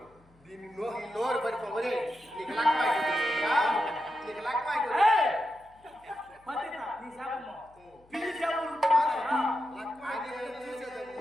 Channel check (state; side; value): noise; left; hum, 30 dB below the sound